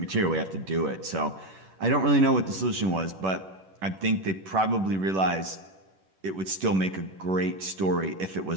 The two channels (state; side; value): late; left; 11 ms